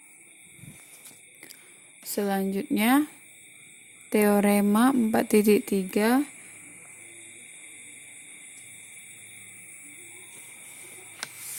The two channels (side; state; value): both; identical; correlation 1.00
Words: Selanjutnya teorema 4.3